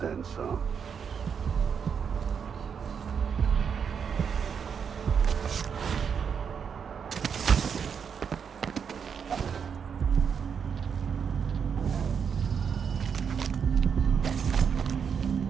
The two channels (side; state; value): left; quieter; 6.9 dB